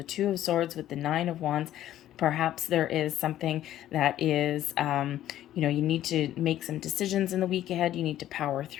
Two of Swords with the Nine of Wands. Perhaps there is something that is, you need to make some decisions in the week ahead. You need to power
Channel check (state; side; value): quieter; right; 12.6 dB